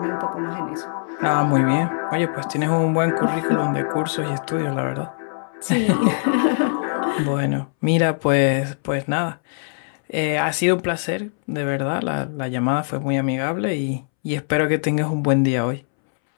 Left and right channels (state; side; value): silent; right; 64 dB below the other